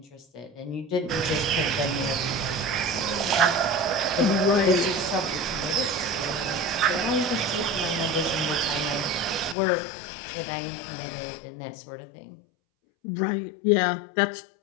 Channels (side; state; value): right; drops out; at 9.6 s